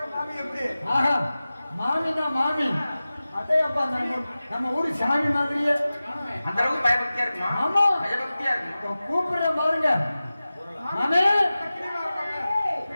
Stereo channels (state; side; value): inverted; both; correlation -0.96